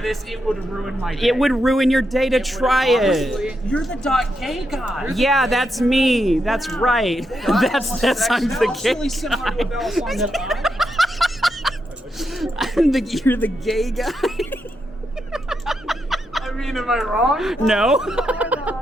this. It would ruin my day. It would ruin your day to try it. You're the .gay guy. Yeah, that's me. That's right. That's I'm the gay really similar to a Balisong that You're the gay guy. I mean, am I wrong? No.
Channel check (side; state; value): both; normal; correlation 0.83